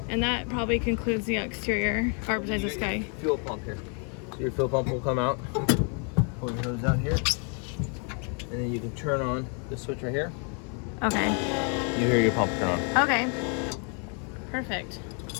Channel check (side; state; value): right; quieter; 38.9 dB